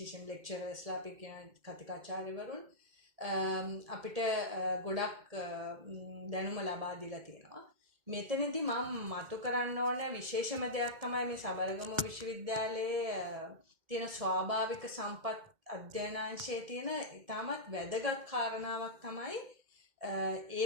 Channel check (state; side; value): late; left; 2.1 ms